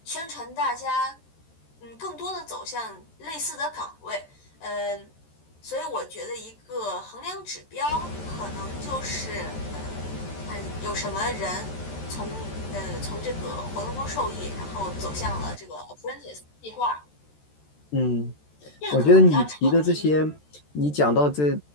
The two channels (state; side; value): late; right; 13 ms